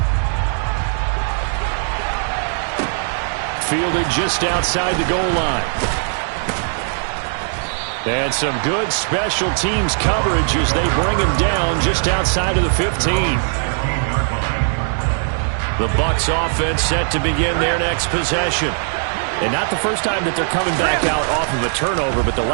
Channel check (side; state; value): left; silent; digital silence